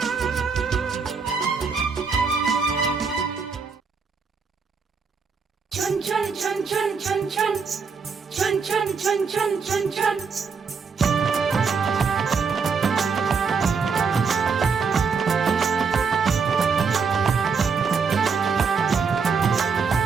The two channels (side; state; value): left; quieter; 5.4 dB